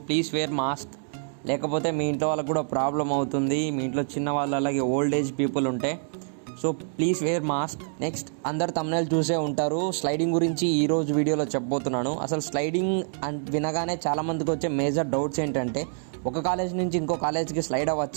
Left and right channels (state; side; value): silent; left; digital silence